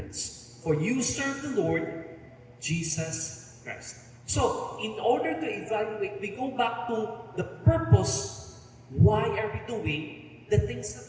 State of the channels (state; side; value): identical; both; correlation 1.00